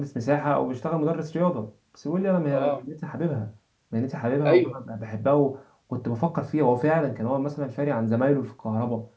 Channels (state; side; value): identical; both; correlation 1.00